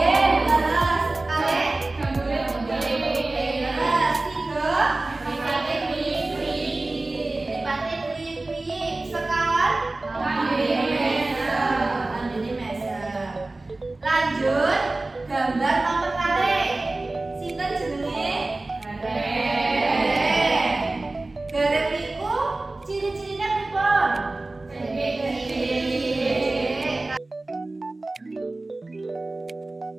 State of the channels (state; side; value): quieter; left; 3.0 dB